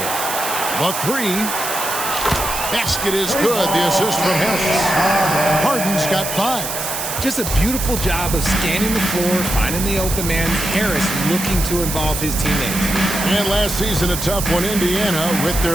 The 3. Basket is good. The assist from Harris. Harden's got 5. Just a beautiful job of scanning the floor, finding the open man. Harris looking to involve his teammates. And last season, a tough one. Indiana with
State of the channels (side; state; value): right; noise; hiss, 4 dB below the sound